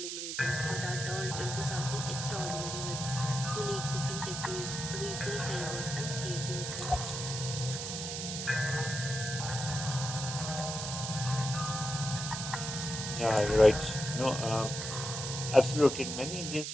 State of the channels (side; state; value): right; noise; hiss, 5 dB below the sound